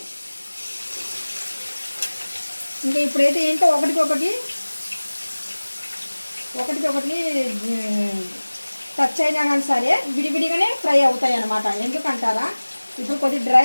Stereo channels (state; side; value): inverted; both; correlation -1.00